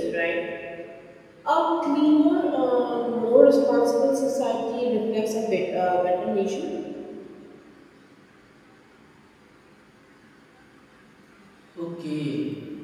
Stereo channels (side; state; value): both; identical; correlation 1.00